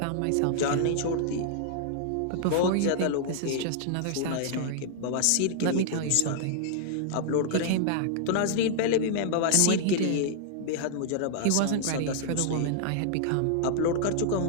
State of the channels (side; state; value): both; different; correlation -0.01